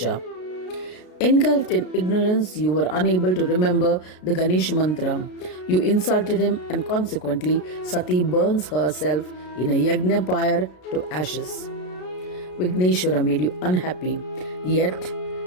Engulfed in ignorance, you were unable to remember the Ganesha mantra. You insulted him, and consequently, Sati burns herself in a yajna pyre to ashes. Vigneshwara made you unhappy. Yet,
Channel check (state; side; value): late; right; 33 ms